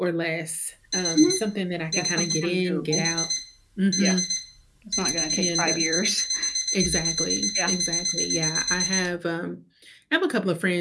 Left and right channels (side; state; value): both; identical; correlation 1.00